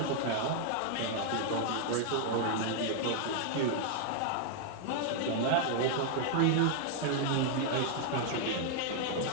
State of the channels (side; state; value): both; different; correlation -0.01